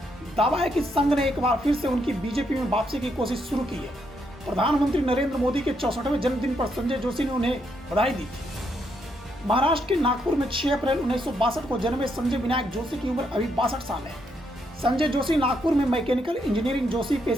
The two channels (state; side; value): normal; both; correlation 0.77